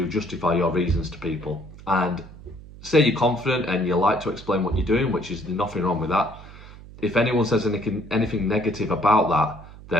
justify your reasons to people. And say you're confident and you like to explain what you're doing, which is nothing wrong with that. If anyone says anything negative about that,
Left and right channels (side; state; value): right; noise; hum, 18 dB below the sound